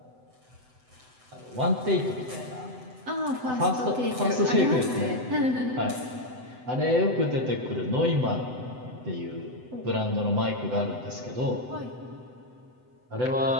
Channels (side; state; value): left; late; 7.9 ms